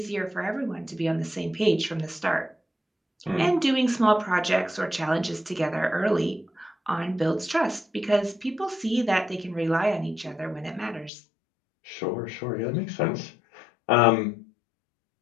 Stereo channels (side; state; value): right; drops out; at 11.1 s